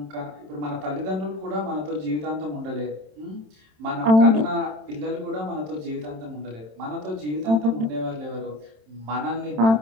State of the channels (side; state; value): left; late; 27 ms